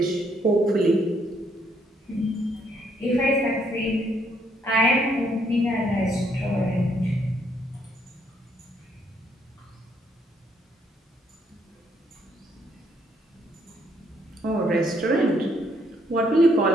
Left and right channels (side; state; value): both; normal; correlation 0.70